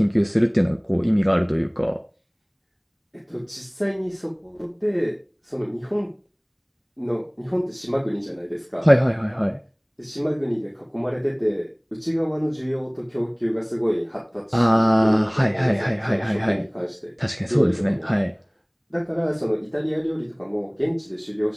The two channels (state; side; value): identical; both; correlation 1.00